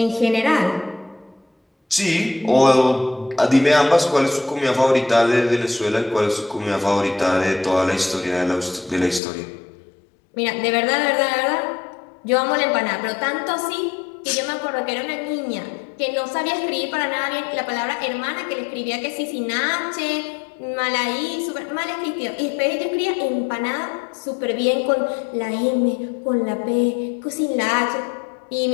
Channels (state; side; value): drops out; right; at 9.2 s